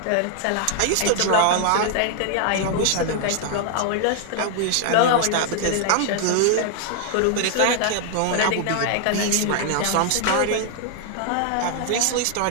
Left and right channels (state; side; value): different; both; correlation 0.00